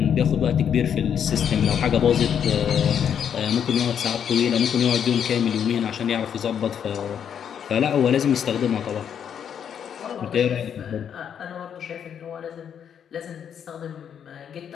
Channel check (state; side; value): quieter; right; 8.3 dB